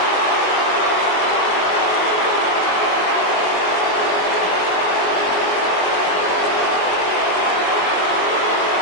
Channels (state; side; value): late; right; 21 ms